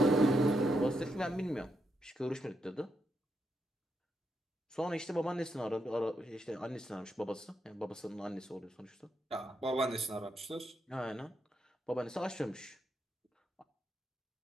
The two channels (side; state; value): both; normal; correlation 0.81